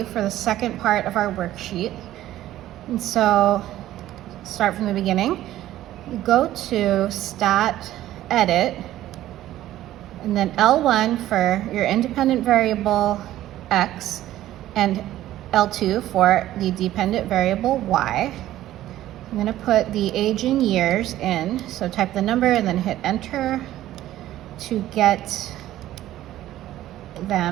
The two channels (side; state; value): left; quieter; 13.9 dB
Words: for the second part of our worksheet. And so start from the beginning. Go to Stat, Edit, and then L1 for your independent variable X and L2 for the dependent variable Y. I'm going to put the age in years in, so type the number and then hit enter to get